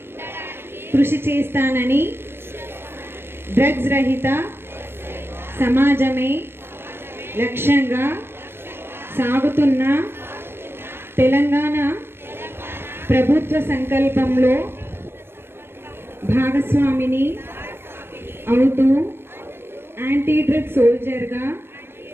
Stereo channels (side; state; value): left; late; 0.11 ms